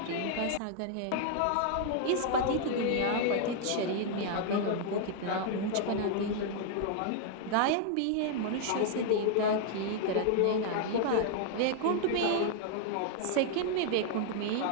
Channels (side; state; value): both; different; correlation 0.00